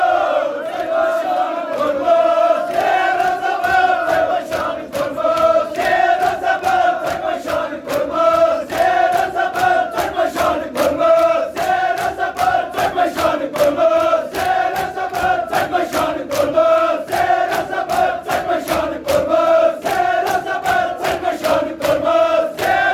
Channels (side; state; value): both; identical; correlation 1.00